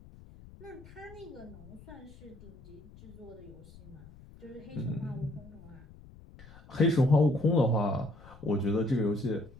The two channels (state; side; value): noise; left; rumble, 20 dB below the sound